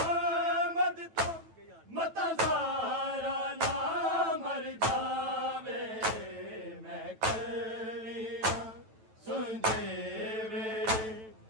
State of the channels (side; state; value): left; late; 9.1 ms